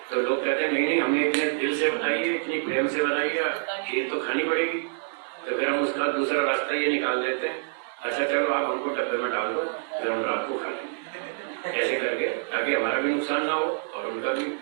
तो लोग कहते हैं नहीं हमने इतने दिल से बनाई है, इतनी प्रेम से बनाई है, खीर तो खानी पड़ेगी। तो फिर हम उसका दूसरा रास्ता ये निकाल देते हैं, अच्छा चलो आप हमको डब्बे में डाल दो, फिर हम रात को खा लेंगे, ऐसे करके, ताकि हमारा भी नुकसान ना हो और उनका भी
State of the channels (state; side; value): silent; left; digital silence